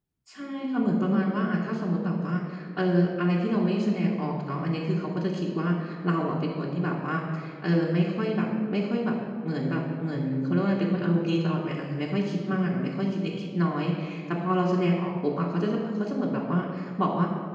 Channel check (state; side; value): identical; both; correlation 1.00